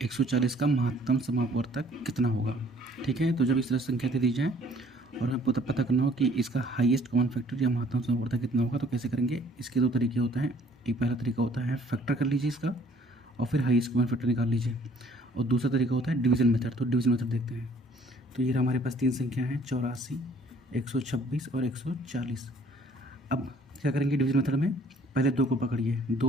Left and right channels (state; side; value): normal; both; correlation 0.58